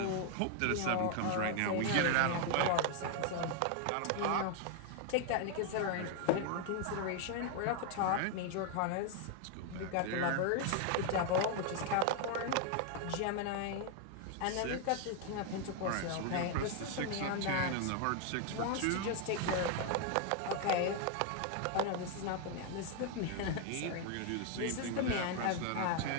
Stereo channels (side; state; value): both; different; correlation 0.00